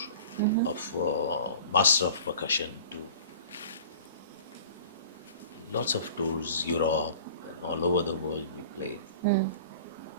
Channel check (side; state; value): both; inverted; correlation -0.43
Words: of Master of Percussion to lots of tours, Europe and all over the world we played.